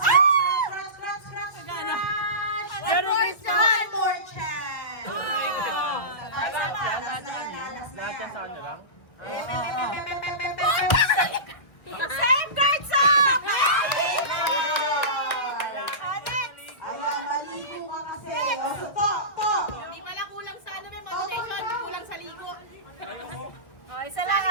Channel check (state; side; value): late; right; 1.3 ms